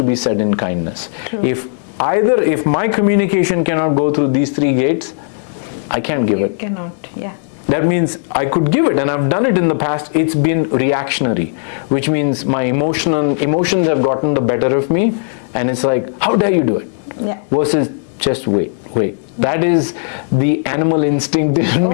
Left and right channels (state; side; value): silent; right; 63 dB below the other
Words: be said in kindness. True. If my communication cannot go through these 3 gates, I can't give it. You cannot, yeah. That means I could give it, and I've done it in the past. It's been reactionary, which means my emotions have gotten the better of me, and it's like, how dare you do it? Yeah. Versus just wait. That is the animal instinct in